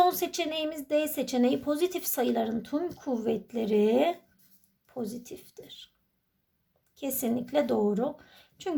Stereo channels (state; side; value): identical; both; correlation 1.00